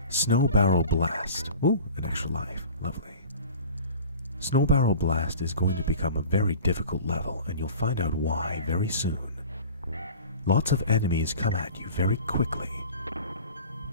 Snow Barrel Blast. Ooh, an extra life. Lovely. Snow Barrel Blast is going to become a very difficult level, and you'll find out why very soon. Lots of enemies come at you very quickly,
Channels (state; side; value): inverted; both; correlation -0.41